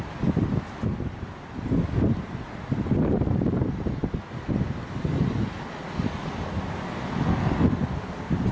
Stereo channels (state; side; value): identical; both; correlation 1.00